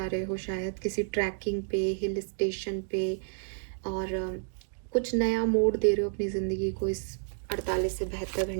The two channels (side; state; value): left; silent; digital silence